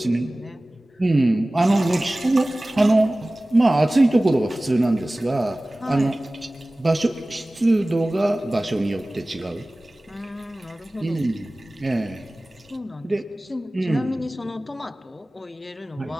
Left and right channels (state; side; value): normal; both; correlation 0.98